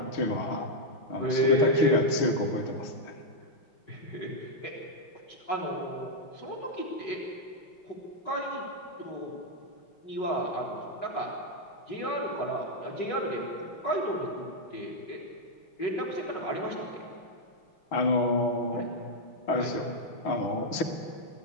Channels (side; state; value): right; late; 6.3 ms